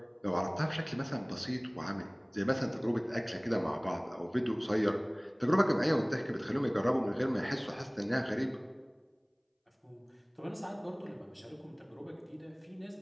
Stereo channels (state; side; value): identical; both; correlation 1.00